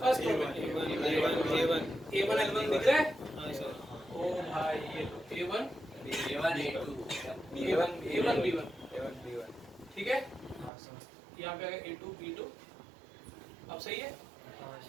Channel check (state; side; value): drops out; left; at 10.7 s